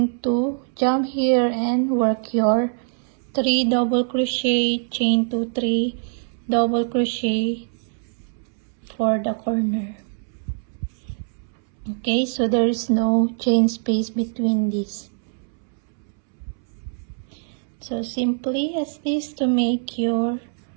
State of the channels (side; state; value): left; silent; 63 dB below the other